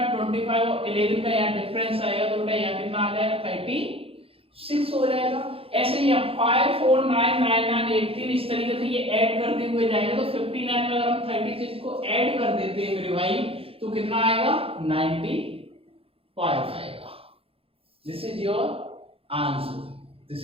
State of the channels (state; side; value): late; left; 0.27 ms